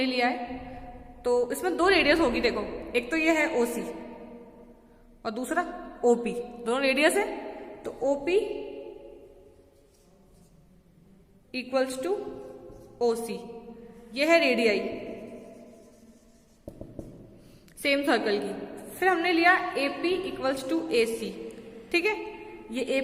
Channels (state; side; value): identical; both; correlation 1.00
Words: लिया है, तो इसमें दो रेडियस होगी, देखो एक तो ये है OC और दूसरा OP, दोनों रेडियस है, तो OP इक्वल्स टू OC, ये है रेडियाई सेम सर्कल की। फिर हमने लिया AP इक्वल्स टू AC, ठीक है, ये